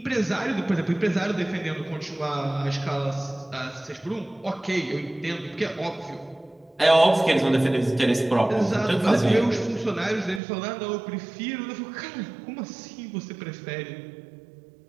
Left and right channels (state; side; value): drops out; left; at 10.4 s